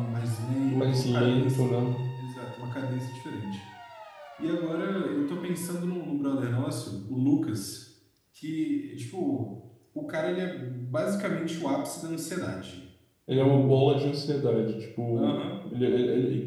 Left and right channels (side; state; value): both; identical; correlation 1.00